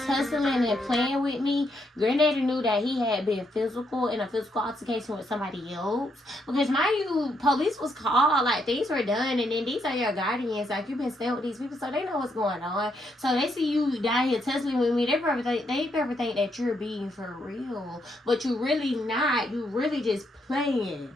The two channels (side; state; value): both; normal; correlation 0.77